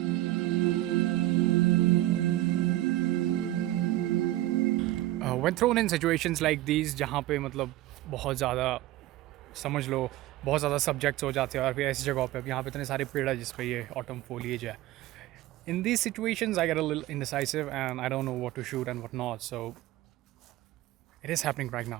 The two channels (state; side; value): quieter; left; 15.9 dB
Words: When thrown in situations like these जहाँ पे मतलब बहुत ज़्यादा समझ लो बहुत ज़्यादा subjects हो जाते हैं, और फिर ऐसी जगहों पे अब यहाँ पे इतने सारे पेड़ है जिस पे ये ऑटम foliage है. In these situations I get a little indecisive and I don't know what to shoot and what not, so it is happening right